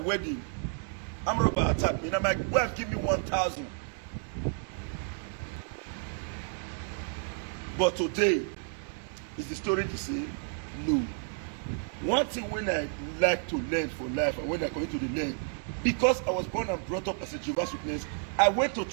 I'm about attack me. Now my wife give me 1,000. But today, is the story the same? No. One thing when I like to learn for life and when I come to the learn, because I was born and brought up as a Jehovah's Witness, I went to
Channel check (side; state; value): left; silent; 57 dB below the other